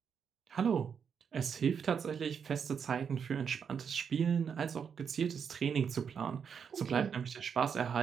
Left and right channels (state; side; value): quieter; left; 6.9 dB